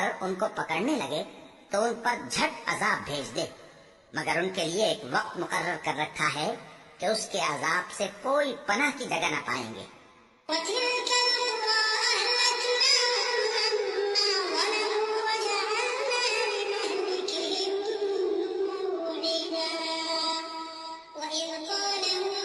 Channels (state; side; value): identical; both; correlation 1.00